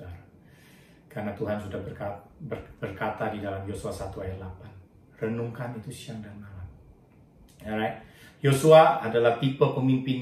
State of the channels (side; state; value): both; identical; correlation 1.00